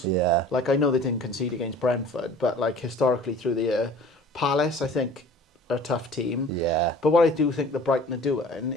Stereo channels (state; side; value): normal; both; correlation 0.46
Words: Yeah. Like, I know they didn't concede against Brentford, but like historically through the year, Palace, I think, are a tough team. Yeah. But what I do think that Brighton are